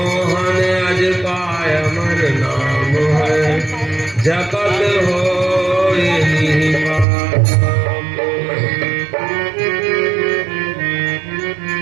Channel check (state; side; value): drops out; left; at 7.1 s